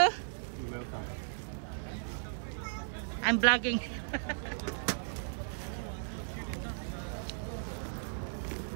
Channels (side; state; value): left; silent; 54 dB below the other